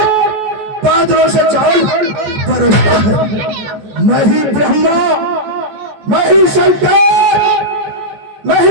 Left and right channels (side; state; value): left; late; 14 ms